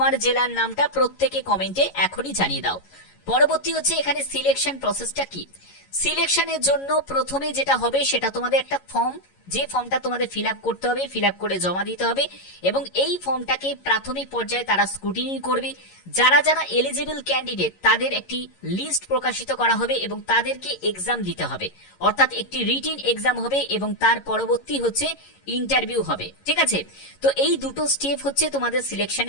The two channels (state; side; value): late; right; 11 ms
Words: জেলার নামটা প্রত্যেকে কমেন্টে এখনই জানিয়ে দাও। পরবর্তী হচ্ছে এখানে সিলেকশন প্রসেসটা কি। সিলেকশনের জন্য প্রথমে যেটা হবে সেটা তোমাদের একটা ফর্ম, যে ফর্মটা তোমাদের ফিল আপ করতে হবে, ফিল আপ করে জমা দিতে হবে এবং এই ফর্মটাকে প্রাথমিক পর্যায়ে তারা স্ক্রুটিনি করবে। যারা যারা এলিজিবল ক্যান্ডিডেট তাদের একটি লিস্ট প্রকাশিত করা হবে এবং তাদেরকে এক্সাম দিতে হবে, অর্থাৎ একটি রিটিন এক্সাম হবে এবং তার পরবর্তী হচ্ছে ইন্টারভিউ হবে। ঠিক আছে, তো এই দুটো স্টেপ হচ্ছে তোমাদের